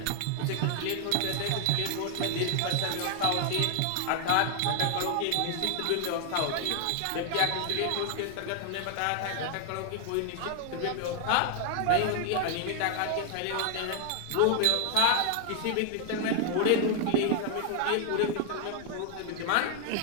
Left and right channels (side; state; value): both; different; correlation 0.00